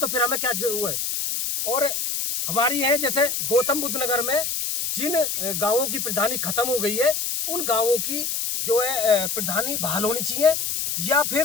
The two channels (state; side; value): noise; left; hiss, 1 dB below the sound